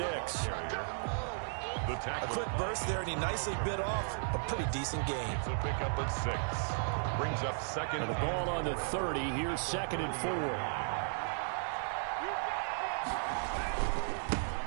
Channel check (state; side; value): silent; left; digital silence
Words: A quick burst there, and he nicely bit off a pretty decent gain. It's a pickup of 6. Brings up second. And the ball on the 30. Here's 2nd and 4.